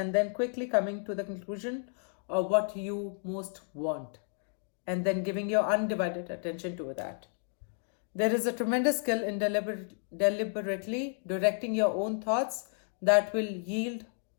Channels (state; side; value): silent; right; 57 dB below the other